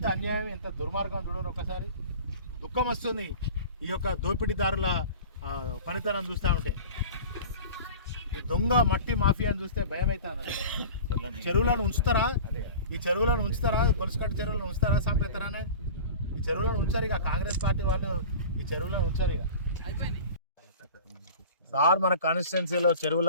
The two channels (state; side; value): inverted; both; correlation -0.37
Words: అన్యాయం, ఎంత దుర్మార్గం చూడరు. ఒకసారి దుఃఖం వస్తుంది ఈ యొక్క దోపిడీదారుల పనితనం చూస్తూ ఉంటే. ఈ దొంగ మట్టి మాఫియాని చూస్తే భయం అవుతాను. చెరువులను ఉంచుతారా? ఈ చెరువులను ఉంచుతారా? గొలుసుకట్టు చెరువులను ఉంచుతారా? సంపేస్తారానే ఈ చెరువులను ఉంచారు. ఇక కాంగ్రెస్ పార్టీ వాళ్ళు ఈ చెరువులను ఉంచారు. ఇక సార్, మన కాన్స్టిట్యున్సీలో చెరువుల